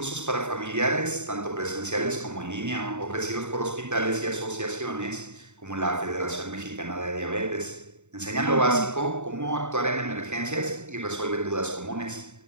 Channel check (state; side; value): late; left; 0.84 ms